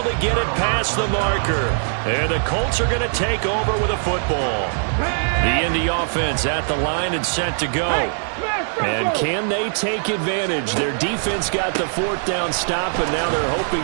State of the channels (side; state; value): left; silent; digital silence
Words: to get it past the marker. And the Colts are going to take over with a football. The Indy offense at the line and set to go. And can they take advantage? Their defense got the 4th down stop, and now they're